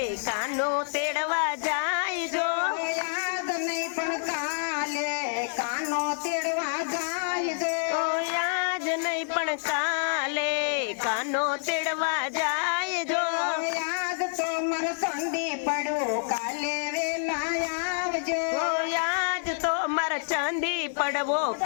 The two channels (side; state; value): right; silent; digital silence